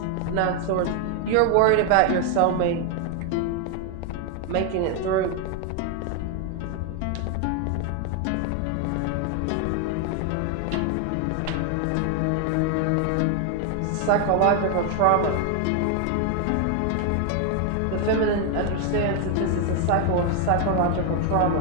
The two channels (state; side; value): different; both; correlation 0.01